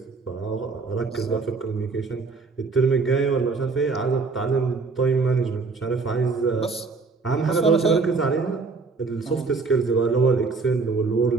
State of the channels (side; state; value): left; quieter; 4.3 dB